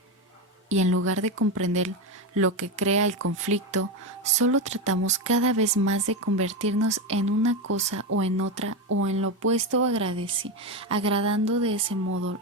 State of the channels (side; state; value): both; normal; correlation 0.13